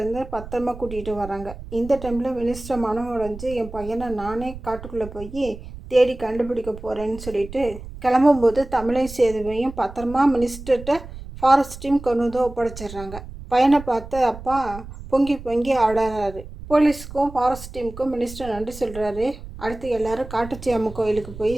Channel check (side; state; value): right; noise; rumble, 13 dB below the sound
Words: பத்திரமா கூட்டிகிட்டு வராங்க. இந்த டைமில் மினிஸ்டர் மனம் உடைஞ்சு என் பையனை நானே காட்டுக்குள்ளே போய் தேடி கண்டுபிடிக்க போகிறேன்னு சொல்லிட்டு கிளம்பும்போது தமிழையும் சேதுவையும் பத்திரமா மினிஸ்டர்கிட்ட ஃபாரஸ்ட் டீம் கொண்டு வந்து ஒப்படைச்சிடுறாங்க. பையனை பார்த்து அப்பா பொங்கி பொங்கி ஆடுறாரு. போலீஸுக்கும் ஃபாரஸ்ட் டீமுக்கும் மினிஸ்டர் நன்றி சொல்கிறாரு. அடுத்து எல்லாரும் காட்டுச்சி அம்மன் கோயிலுக்கு போய்